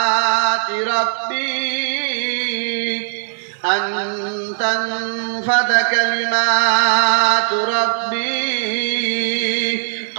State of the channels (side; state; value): left; silent; digital silence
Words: রাব্বি আন তানফাদা কালিমাতু রাব্বি